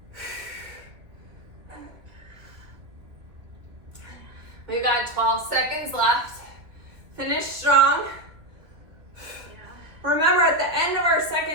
We've got 12 seconds left. Finish strong. Remember, at the end of our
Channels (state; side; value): late; left; 2.0 ms